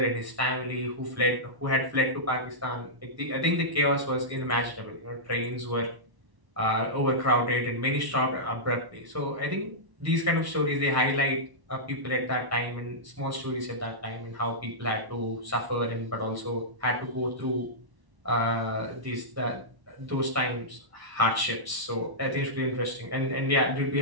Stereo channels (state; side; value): late; left; 1.1 ms